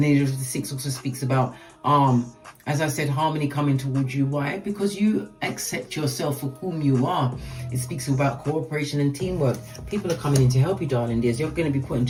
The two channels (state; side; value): identical; both; correlation 1.00